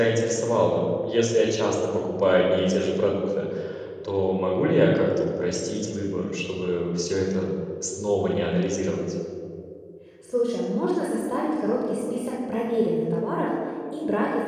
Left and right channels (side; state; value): both; identical; correlation 1.00